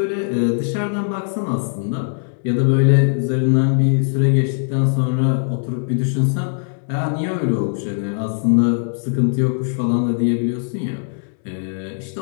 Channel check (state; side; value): silent; right; 66 dB below the other